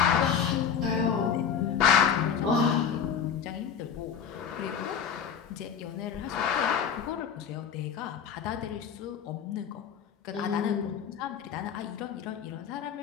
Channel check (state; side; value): quieter; right; 7.5 dB